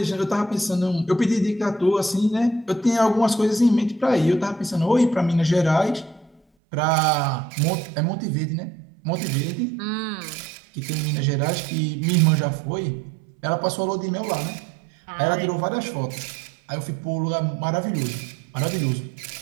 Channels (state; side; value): drops out; left; at 6.4 s